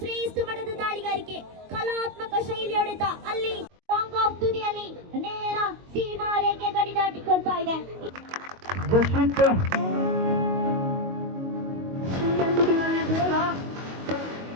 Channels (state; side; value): late; left; 22 ms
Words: ಶ್ರೇಷ್ಠ ಮಟ್ಟದ ದಾಳಿಗಾರಿಕೆ. ಕಲಾತ್ಮಕ ಶೈಲಿ ಹೊಡೆತ ಅಲ್ಲಿ ಲಾಂಗ್ ಆಫ್ ತುದಿಯಲ್ಲಿ ನೇರ ಸೀಮಾ ರೇಖೆ ಗಡಿ ದಾಟಿಕೊಳ್ತಾ ಇದೆ.